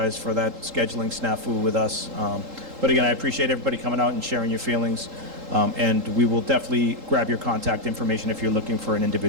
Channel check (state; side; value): late; left; 3.8 ms